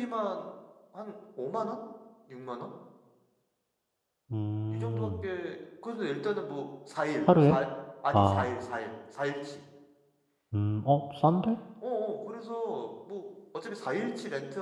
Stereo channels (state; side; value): identical; both; correlation 1.00